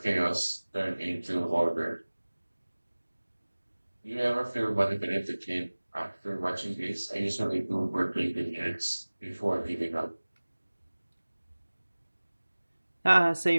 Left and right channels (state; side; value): inverted; both; correlation -1.00